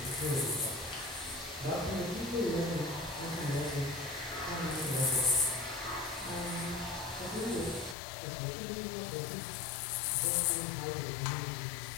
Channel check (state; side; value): drops out; right; at 8.0 s